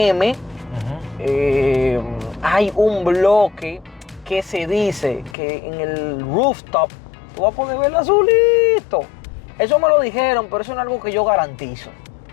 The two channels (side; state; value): right; drops out; at 5.4 s